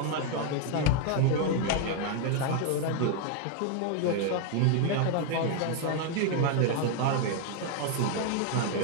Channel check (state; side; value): different; both; correlation 0.01